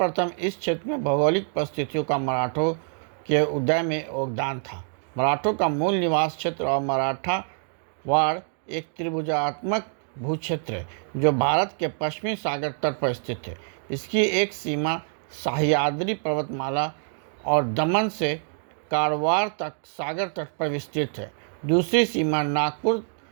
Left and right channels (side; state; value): left; silent; 58 dB below the other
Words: इस क्षेत्र में भौगोलिक परिस्थितियों का मराठों के उदय में योगदान था। मराठों का मूल निवास क्षेत्र और मराठा वाड़ एक त्रिभुजात्मक भूक्षेत्र है जो भारत के पश्चिमी सागर तट पर स्थित है। इसकी एक सीमा सह्याद्री पर्वतमाला और दमन से कारवार तक सागर तट पर विस्तृत है। दूसरी सीमा नागपुर